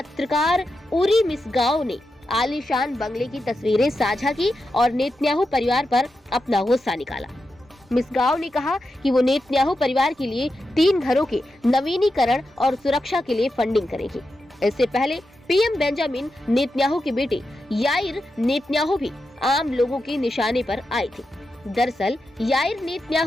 उरी मिसगांव ने आलीशान बंगले की तस्वीरें साझा की और नेतन्याहू परिवार पर अपना गुस्सा निकाला। मिसगांव ने कहा कि वो नेतन्याहू परिवार के लिए 3 घरों के नवीनीकरण और सुरक्षा के लिए फंडिंग करेगी। इससे पहले पीएम बेंजामिन नेतन्याहू के बेटे याइर नेतन्याहू भी आम लोगों के निशाने पर आए थे। दरअसल याइर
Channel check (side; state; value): both; normal; correlation 0.88